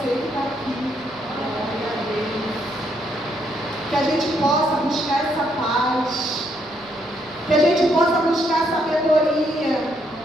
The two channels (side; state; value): right; noise; rumble, 27 dB below the sound